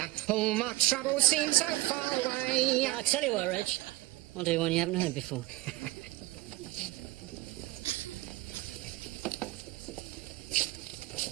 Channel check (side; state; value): left; quieter; 18.2 dB